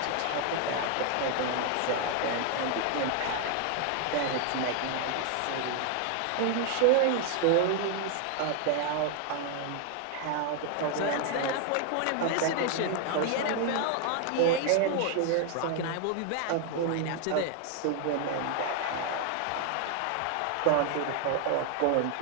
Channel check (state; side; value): different; both; correlation 0.00